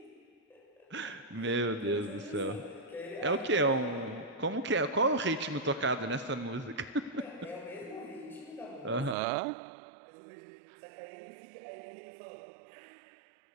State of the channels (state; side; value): drops out; left; at 9.2 s